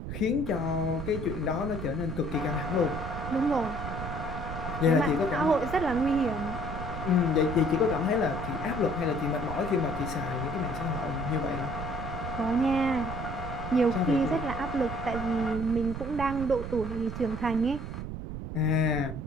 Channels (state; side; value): noise; right; rumble, 6 dB below the sound